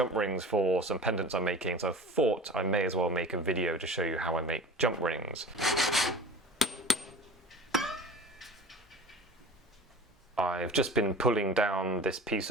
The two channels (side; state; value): both; normal; correlation 0.37